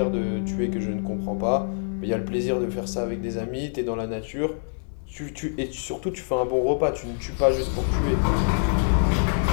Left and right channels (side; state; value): right; silent; digital silence